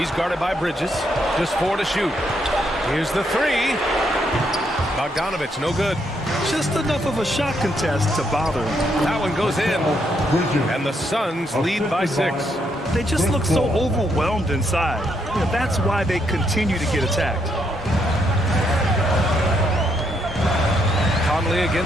guarded by Bridges. Just 4 to shoot. Here's the 3. Bogdanovich, no good. Just enough of a shot contest to bother him. That one goes in. And the Suns lead by 6. They just look so overwhelmed inside. Yeah, that's why they continue to get attacked. Conley Conley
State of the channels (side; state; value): both; normal; correlation 0.76